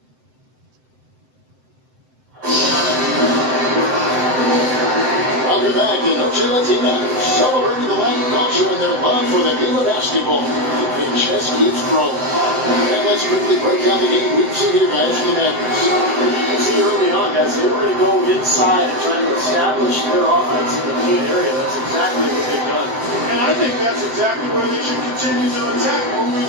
Welcome back to Noche Latina, celebrating the Latin culture and their love for the game of basketball. The chess keeps growing. And let's quickly break down the game we've seen here, guys, for the Mavericks. You can see early on, guys, they were going to go inside and try to establish their offense in the paint area. That's exactly what they've done. And I think that's exactly where they should continue to attack moving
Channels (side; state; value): left; late; 7.8 ms